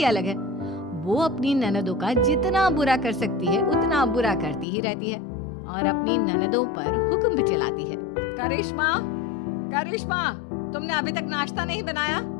अलग है। वो अपनी ननदों का जितना बुरा कर सकती है उतना बुरा करती ही रहती है और अपनी ननदों पर हुक्म भी चलाती है। करिश्मा, करिश्मा, तुमने अभी तक नाश्ता नहीं बनाया?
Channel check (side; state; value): right; drops out; at 4.7 s